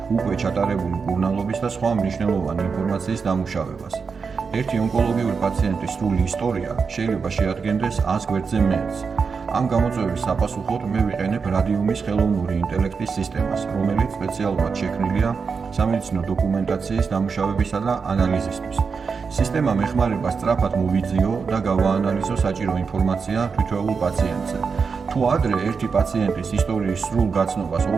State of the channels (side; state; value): left; quieter; 5.4 dB